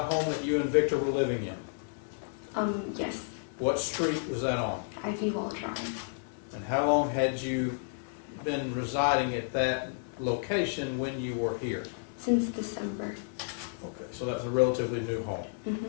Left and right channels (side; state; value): right; silent; digital silence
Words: home that you and Victor were living in? Yes. What street was that on? Ivy Wall Drive. And how long had you been residing at that location when you were here? Since December. Okay, so that's a relatively new home.